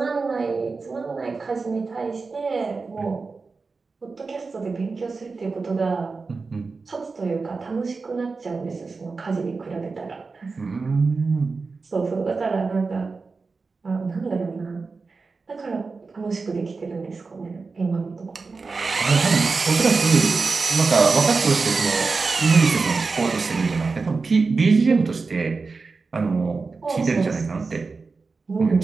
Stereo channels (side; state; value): left; quieter; 4.3 dB